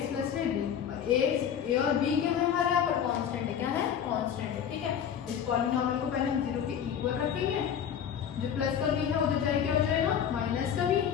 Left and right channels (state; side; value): quieter; right; 8.5 dB